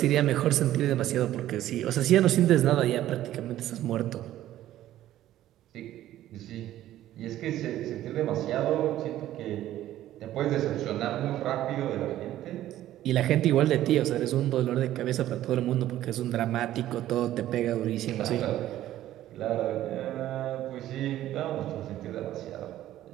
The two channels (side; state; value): left; quieter; 13.4 dB